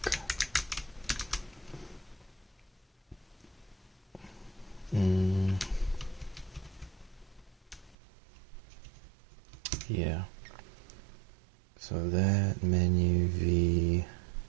Yeah. So that menu V.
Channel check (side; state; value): left; drops out; at 8.0 s